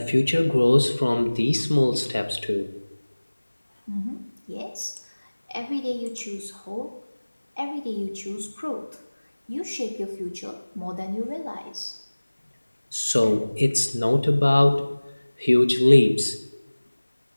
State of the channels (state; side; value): inverted; both; correlation -1.00